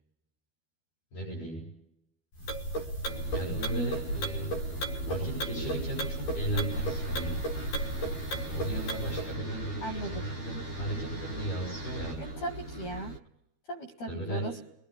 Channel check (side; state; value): right; late; 12 ms